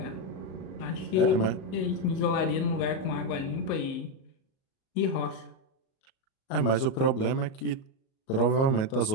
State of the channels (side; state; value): right; late; 37 ms